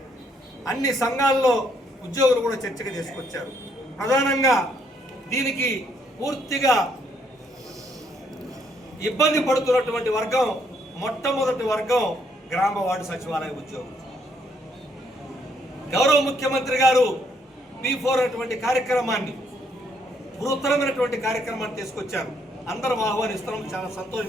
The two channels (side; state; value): both; normal; correlation 0.71